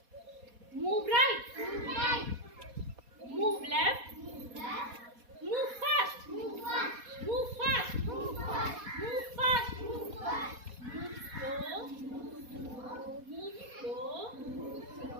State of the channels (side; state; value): left; late; 4.2 ms